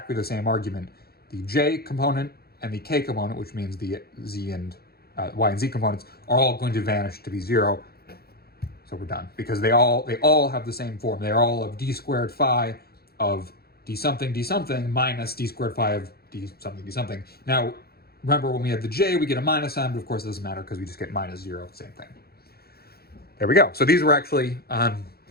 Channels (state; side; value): late; right; 0.45 ms